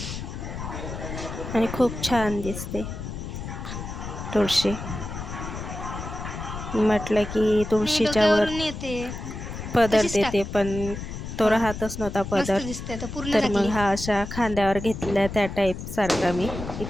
आणि खूप छान दिसते तुळशी. म्हटलं की तुळशीच्या वर पदर देते, पण तो राहतच नव्हता पदर. तर मग हा अशा खांद्यावर घेतलेला त्या टाईप सारखा मी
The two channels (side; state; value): left; noise; rumble, 8 dB below the sound